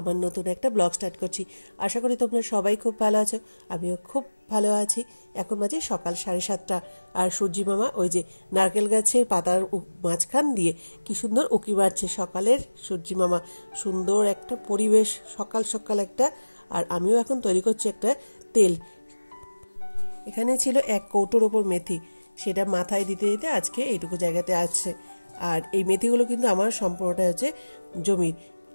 নতুন একটা ব্লগ স্টার্ট করছি। আশা করি তোমরা সবাই খুব ভালো আছো, আমিও খুব ভালো আছি। এখন বাজে সকাল 7:30 আর সূর্যি মামা ওই যে নারকেল গাছের পাতার মাঝখান দিয়ে কি সুন্দর উঁকি মারছে সকালের সূর্যি মামা। সুন্দর একটা পরিবেশ, সকাল সকাল একটা। আর আমিও এখন তৈরি করছি একটা তেল। এখানে ছিল 1 কৌটোর ওপর মেথি, সেটা মাথায় দিতে দিতে আজকে এইটুকু জায়গাতে আছে। আর এই মেথিগুলো কিন্তু আমার সম্পূর্ণটা হচ্ছে জমির।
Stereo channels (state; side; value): inverted; both; correlation -1.00